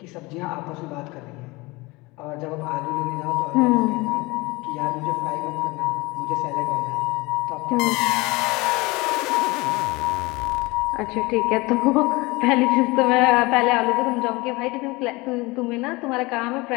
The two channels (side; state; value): right; quieter; 23.2 dB